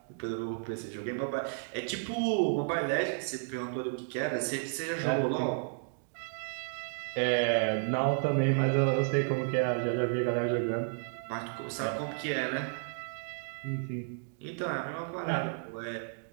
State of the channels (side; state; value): left; silent; digital silence